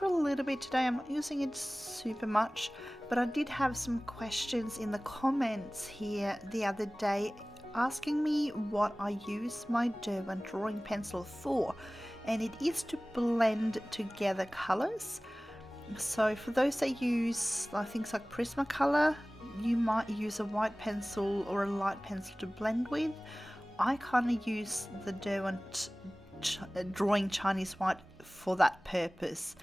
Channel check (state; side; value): normal; both; correlation 0.98